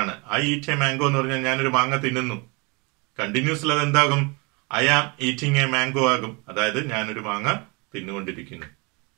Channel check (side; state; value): left; quieter; 29.3 dB